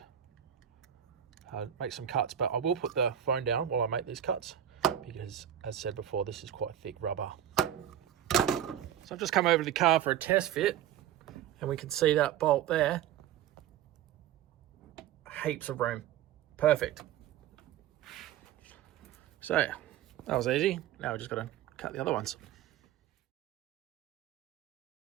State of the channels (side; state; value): left; quieter; 10.7 dB